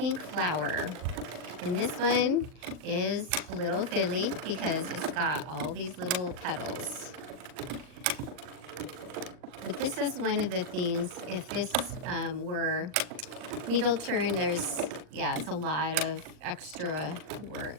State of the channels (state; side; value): late; left; 39 ms